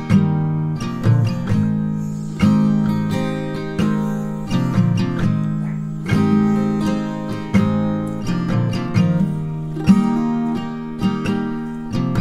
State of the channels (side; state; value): both; identical; correlation 1.00